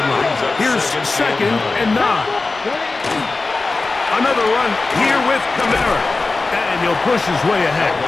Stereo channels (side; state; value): right; quieter; 3.6 dB